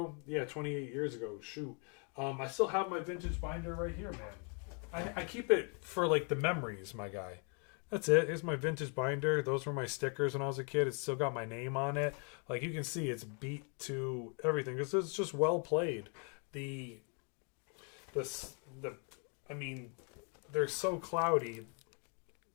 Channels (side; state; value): right; quieter; 38.8 dB